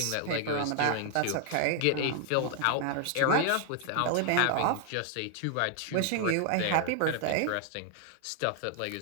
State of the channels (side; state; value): both; different; correlation 0.00